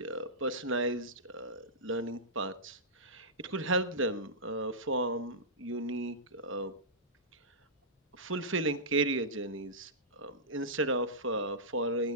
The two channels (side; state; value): both; normal; correlation -0.16